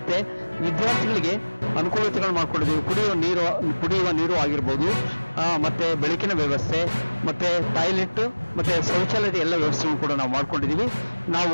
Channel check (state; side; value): inverted; both; correlation -1.00